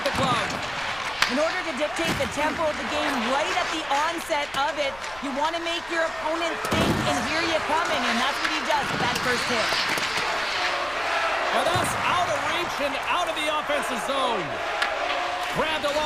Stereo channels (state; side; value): noise; left; rumble, 21 dB below the sound